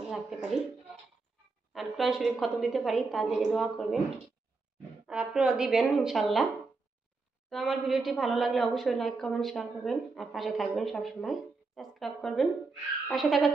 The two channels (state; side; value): quieter; left; 4.0 dB